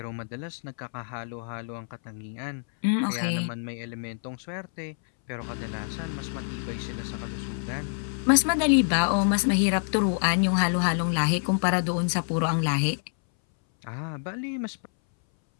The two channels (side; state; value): right; silent; 60 dB below the other